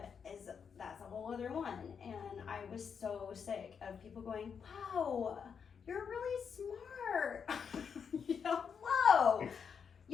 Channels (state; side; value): quieter; right; 6.7 dB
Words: that's a whole other one. And I was so sick of people going, wow, you're really smart. Whoa,